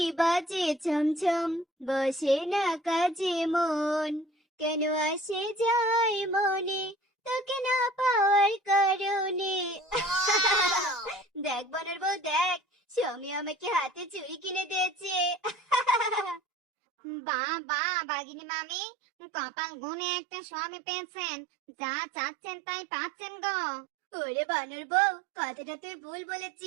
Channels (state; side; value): drops out; left; at 16.4 s